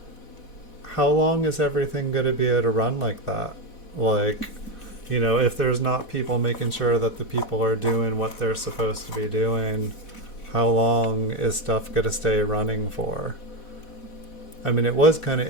how long is everything going to be able to run like that? Like, if there's not people making sure that the people are doing what they're supposed to be doing, how long is stuff going to stay running for? I mean, it was kind of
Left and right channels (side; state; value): right; late; 4.1 ms